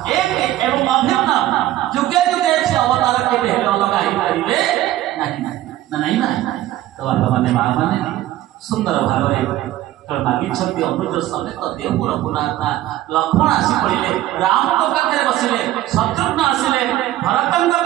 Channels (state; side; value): quieter; left; 14.5 dB